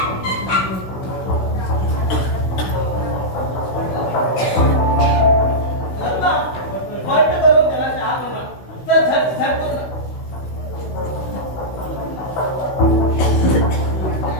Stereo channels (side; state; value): right; late; 16 ms